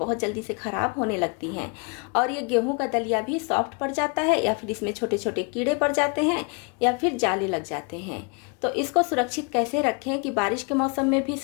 जल्दी से ख़राब होने लगती हैं, और ये गेहूं का दलिया भी सॉफ्ट पड़ जाता है या फिर इसमें छोटे छोटे कीड़े पड़ जाते हैं या फिर जाले लग जाते हैं। तो इसको सुरक्षित कैसे रखें कि बारिश के मौसम में भी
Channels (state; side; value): quieter; right; 34.6 dB